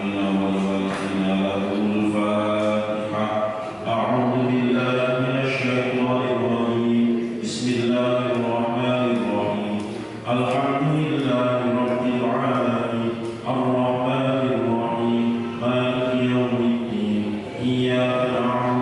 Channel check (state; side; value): identical; both; correlation 1.00